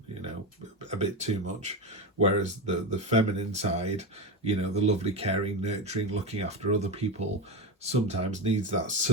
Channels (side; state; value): both; normal; correlation 0.18